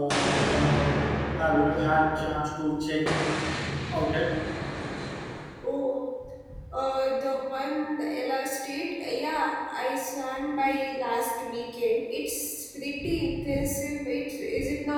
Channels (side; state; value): both; identical; correlation 1.00